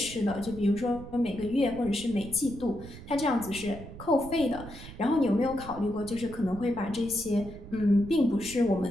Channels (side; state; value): right; noise; rumble, 14 dB below the sound